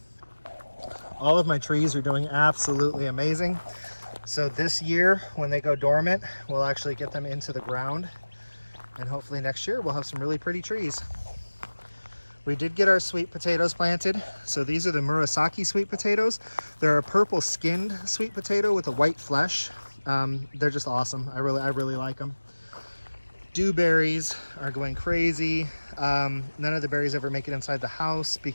All of my trees are doing absolutely amazing. So this year, when they go dormant, we'll actually get them into the ground. And hopefully next year we'll have some really pretty trees. We did get our sweet potatoes planted. So these are the Murasaki sweet potatoes. They're a purple skinned sweet potato with a white flesh. They're just awesome. I really like them. Dewberries are going crazy. None of the berries ever make it inside the house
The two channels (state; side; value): inverted; both; correlation -1.00